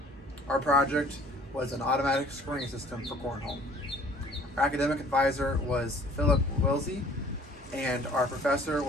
Our project was an automatic scoring system for Cornhole. Our academic advisor was Philip Wilsey, and our professor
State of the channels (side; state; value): both; normal; correlation 0.52